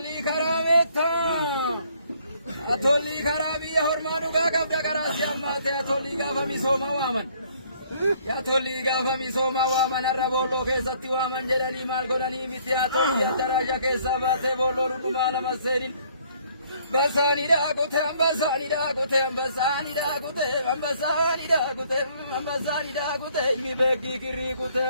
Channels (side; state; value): both; inverted; correlation -0.63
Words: karaa meettaa. Tolli karaa biyya hormaa dhugaa qabda karaa si ammaatee tolli gaafa misooma waaman. Tolli gaafa misooma waaman har'a boolloo keessatti waaman jedhanii maal godhanii miti haa tolli addaraasha keessaa baatee boolloo dhugumaa lama seenin. Basani da kute, basani da kute, basani da kute, basani da kute, basani da kute, mi begi kiri kute